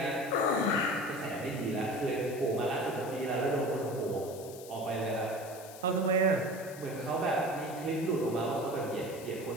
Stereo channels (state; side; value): noise; left; hiss, 16 dB below the sound